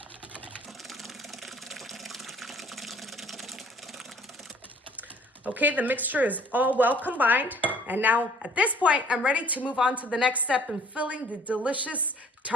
Okay, the mixture is all well combined. And now at this point, I'm ready to move on to the next step in filling the delicious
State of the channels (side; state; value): both; normal; correlation 0.56